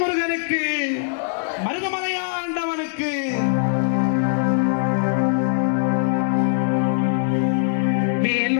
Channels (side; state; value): right; silent; 63 dB below the other